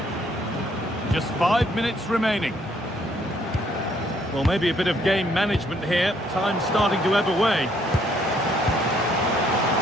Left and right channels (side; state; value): both; normal; correlation 0.67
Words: Just 5 minutes remaining. Well, maybe a bit of game management here. Time's starting to ebb away.